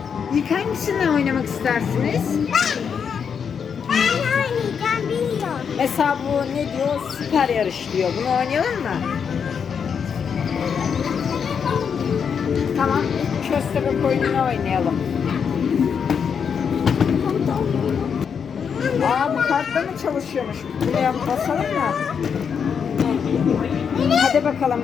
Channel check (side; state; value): right; quieter; 6.9 dB